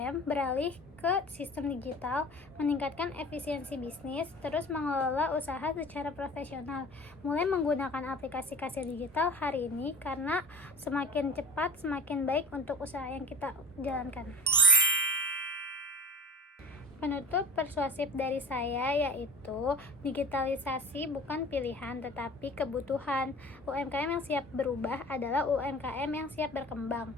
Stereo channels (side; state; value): both; normal; correlation 0.39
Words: beralih ke sistem digital, meningkatkan efisiensi bisnis, terus mengelola usaha secara profesional. Mulai menggunakan aplikasi kasir digital hari ini, karena semakin cepat semakin baik untuk usaha yang kita jalankan. Penutup persuasif dari saya yaitu digitalisasi bukan pilihan tetapi kebutuhan. UMKM yang siap berubah adalah UMKM yang siap berkembang.